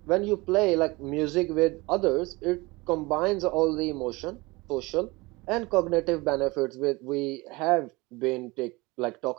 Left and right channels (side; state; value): left; quieter; 23.5 dB